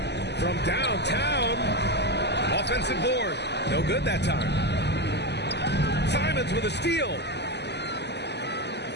From downtown. Offensive board. No good that time. Simons with a steal.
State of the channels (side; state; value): right; late; 0.50 ms